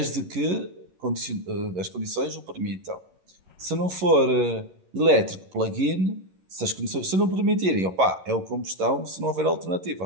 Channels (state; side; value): late; left; 11 ms